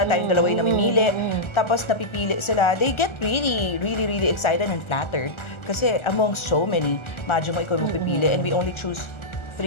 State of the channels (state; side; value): late; right; 1.4 ms